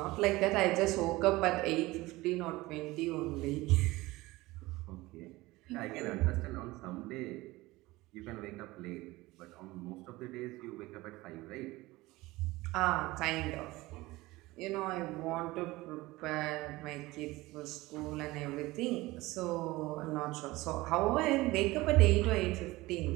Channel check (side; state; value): left; quieter; 19.9 dB